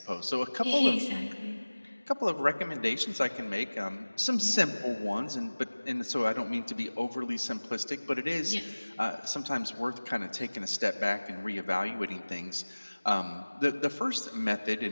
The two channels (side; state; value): both; inverted; correlation -1.00